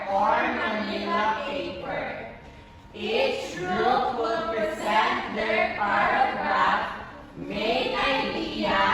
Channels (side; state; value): both; identical; correlation 1.00